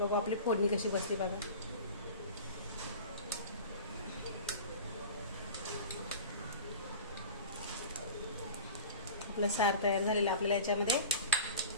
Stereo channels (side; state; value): both; inverted; correlation -0.36